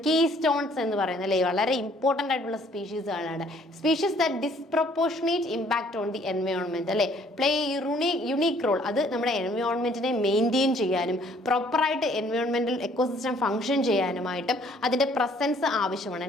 കീസ്റ്റോൺസ് എന്ന് പറയുന്നത് അല്ലേ. വളരെ ഇമ്പോർട്ടൻ്റ് ആയിട്ടുള്ള സ്പീഷീസുകളാണ്. Species that disproportionate impact on the environment അല്ലേ, പ്ലേ യുണീക്ക് റോൾ. അത് നമ്മുടെ എൻവയോൺമെന്റിനെ മെയിൻറ്റെയിൻ ചെയ്യാനും പ്രോപ്പറായിട്ട് എൻവയോൺമെന്റൽ എക്കോസിസ്റ്റം ഫംഗ്ഷൻ ചെയ്യാനുമായിട്ടും അതിന്റെ പ്രസൻസ് ആവശ്യമാണ്.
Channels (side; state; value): both; normal; correlation 0.61